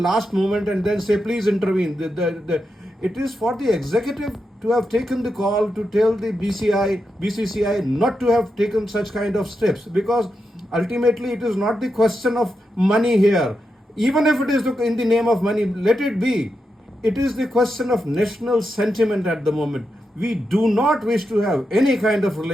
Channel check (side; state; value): both; normal; correlation 0.86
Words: moment and then say please intervene. It is for the executive to have taken the call to tell the BCCI not to have taken such kind of steps, because ultimately it is not the question of money here. Even if it is in the name of money, let it be. It is the question of national sentiment at the moment. We do not wish to have any kind of